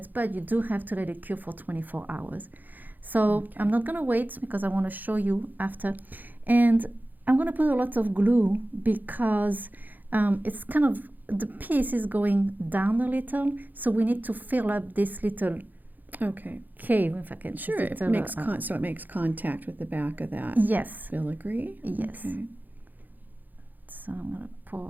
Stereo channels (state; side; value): late; left; 0.085 ms